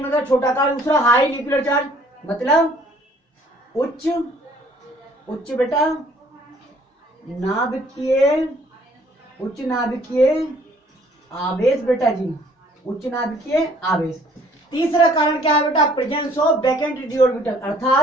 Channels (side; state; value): both; normal; correlation 0.59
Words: मतलब छोटा आकार, दूसरा हाई न्यूक्लियर चार्ज मतलब उच्च बेटा उच्च नाभिकीय आवेश बेटा जी, उच्च नाभिकीय आवेश। तीसरा कारण क्या है बेटा, presence of vacant D orbital,